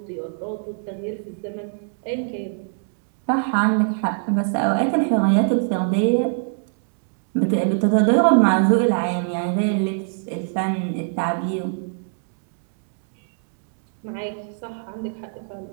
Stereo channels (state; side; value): silent; left; digital silence